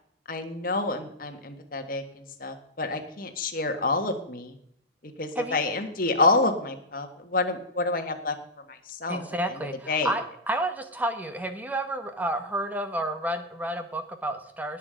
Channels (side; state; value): both; normal; correlation -0.05